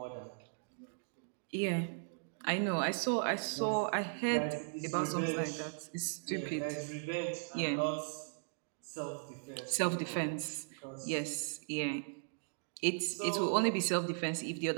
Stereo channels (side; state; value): left; silent; digital silence